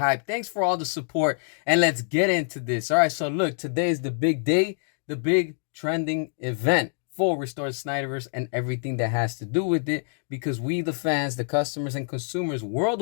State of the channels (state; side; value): silent; right; digital silence